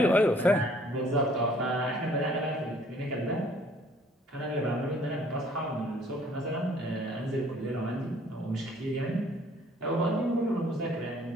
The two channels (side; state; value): both; normal; correlation 0.58